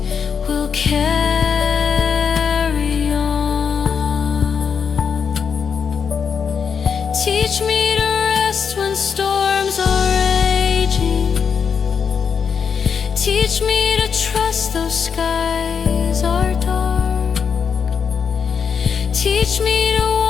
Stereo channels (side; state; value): right; quieter; 6.6 dB